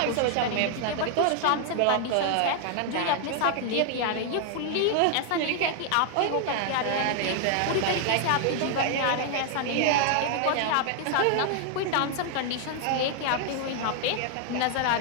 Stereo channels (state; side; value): different; both; correlation 0.00